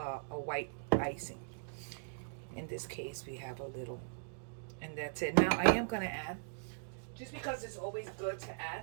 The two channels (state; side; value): silent; left; digital silence